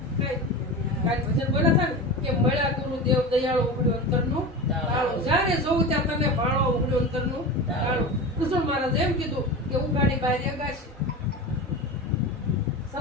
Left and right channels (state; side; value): normal; both; correlation 0.27